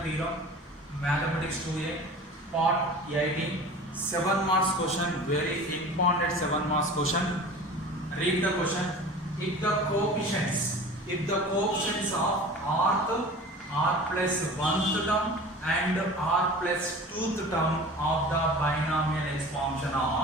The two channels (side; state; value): both; normal; correlation 0.39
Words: theorem, mathematics 2A, part 18, 7 marks question, very important 7 marks question. Read the question. If the coefficients of rth, r plus 1th term and r plus 2th term of the binomial expansion